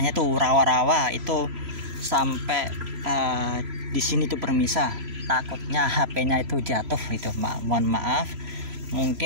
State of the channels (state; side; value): late; left; 3.0 ms